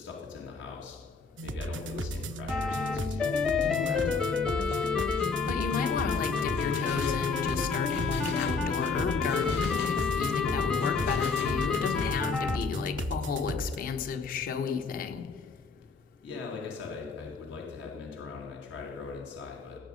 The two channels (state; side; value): quieter; right; 4.4 dB